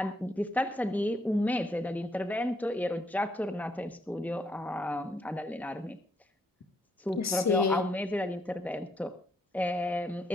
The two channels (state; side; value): normal; both; correlation 0.73